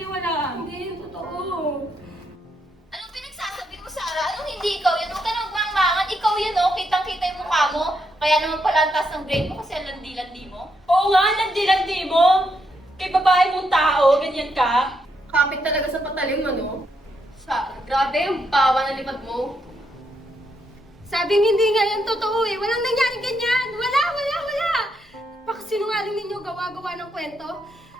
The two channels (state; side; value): normal; both; correlation 0.79